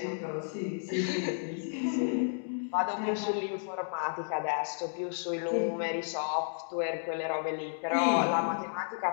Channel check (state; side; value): silent; right; digital silence